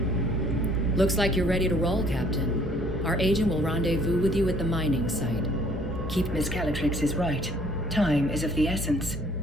Looks like you're ready to roll, Captain. Our agent will rendezvous with you at the mining site. Miss Calatrix is right. Time is of the essence.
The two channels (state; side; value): normal; both; correlation 0.59